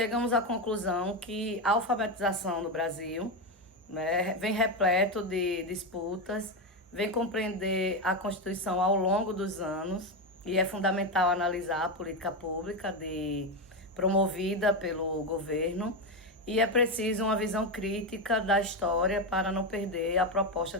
à conclusão que a alfabetização no Brasil, né, vem repleto de disputas, vem compreender a Constituição ao longo dos anos e é fundamental analisar a política pública promovida pelo governo. E é preciso uma visão crítica da história para não perder a proposta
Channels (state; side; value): normal; both; correlation 0.11